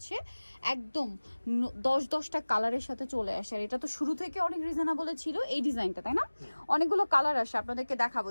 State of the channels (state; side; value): inverted; both; correlation -1.00